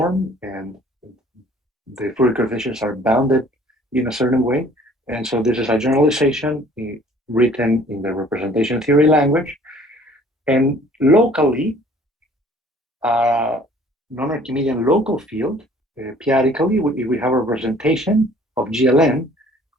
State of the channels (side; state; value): both; normal; correlation 0.54